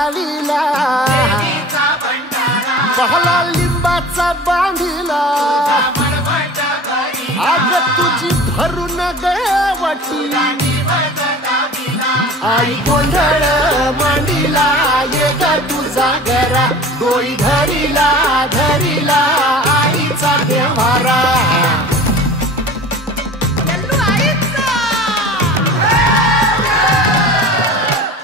पहला लिंबाचा बांधिला आग तुझी भरून गवटी आई गोंधळ मांडीला ये ग तुझा घरा डोई धरिला धरिला आईचा देवारा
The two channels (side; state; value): both; normal; correlation 0.40